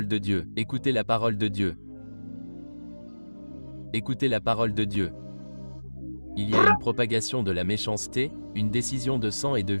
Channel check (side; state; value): both; inverted; correlation -1.00